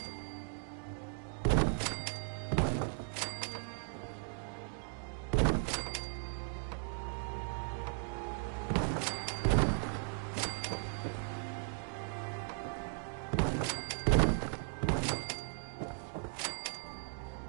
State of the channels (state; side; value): silent; left; 53 dB below the other